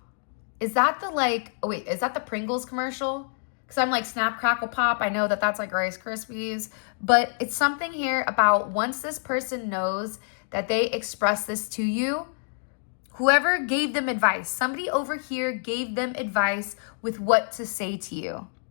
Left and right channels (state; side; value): silent; right; digital silence